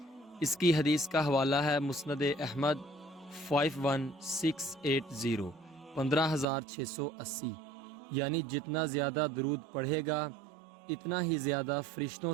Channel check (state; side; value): drops out; left; at 6.5 s